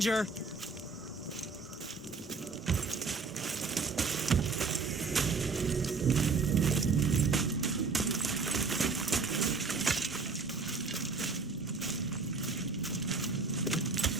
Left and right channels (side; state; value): left; quieter; 4.5 dB